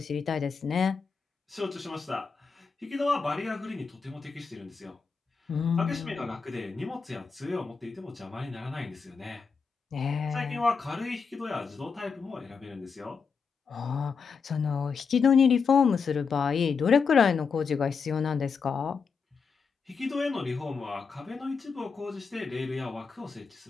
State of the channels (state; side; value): quieter; right; 5.4 dB